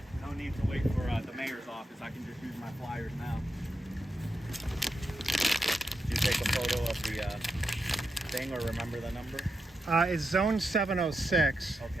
no need to wait for the mayor's office. I can just use my flyers now. Did you take a photo of the thing or remember the number? It's zone 706.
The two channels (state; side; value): normal; both; correlation 0.85